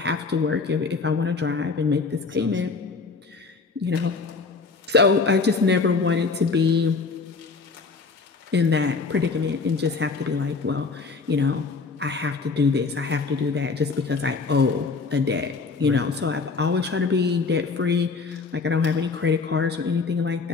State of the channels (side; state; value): right; quieter; 4.4 dB